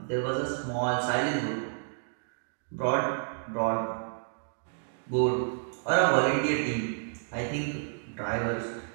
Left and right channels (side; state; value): left; silent; digital silence